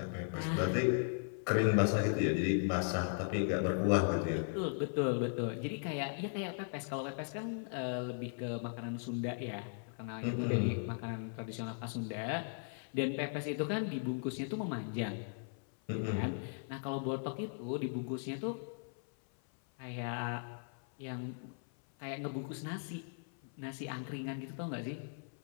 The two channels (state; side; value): silent; right; 53 dB below the other